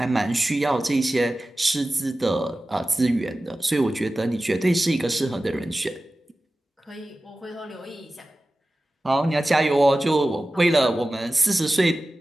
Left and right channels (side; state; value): both; normal; correlation 0.96